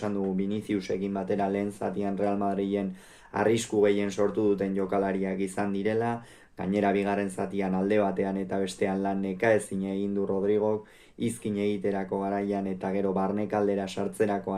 dugu Viniciusekin batera lehen zatian Real Madriden arrisku gehien sortu duten jokalariak izan direla, gainera bigarren zatian alde batean eta bestean lan nekaezin egin du Rodrigok, izkin egiterako garaian eta gero barnekaldera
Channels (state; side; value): identical; both; correlation 1.00